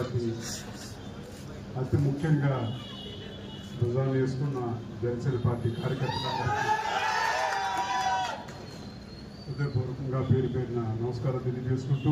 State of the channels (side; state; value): both; identical; correlation 1.00